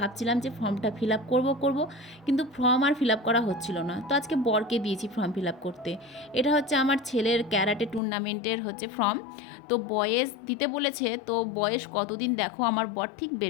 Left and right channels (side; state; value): right; drops out; at 8.0 s